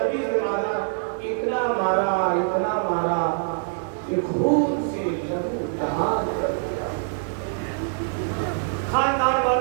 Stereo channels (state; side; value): silent; left; digital silence